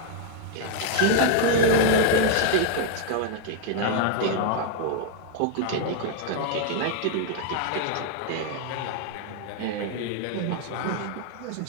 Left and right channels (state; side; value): different; both; correlation 0.00